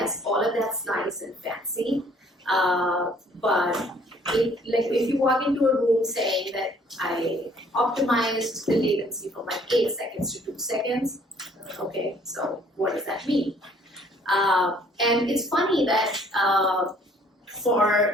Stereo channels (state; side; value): normal; both; correlation 0.59